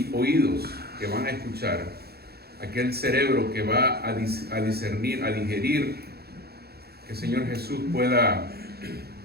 oídos que van a escuchar, aquel cerebro que va a discernir, a digerir, que Señor Jesús pueda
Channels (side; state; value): left; late; 0.46 ms